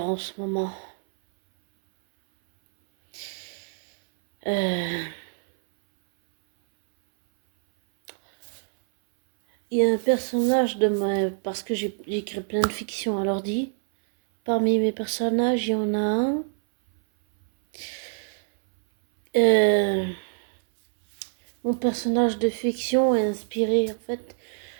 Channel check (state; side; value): silent; left; 62 dB below the other